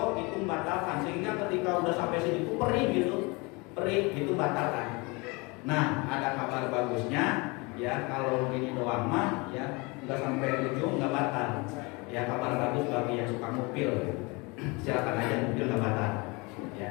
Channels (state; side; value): quieter; right; 27.1 dB